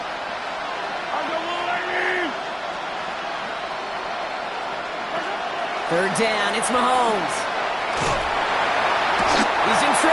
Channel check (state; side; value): identical; both; correlation 1.00